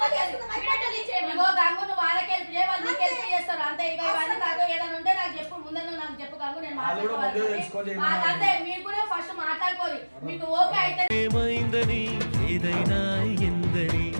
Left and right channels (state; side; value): inverted; both; correlation -1.00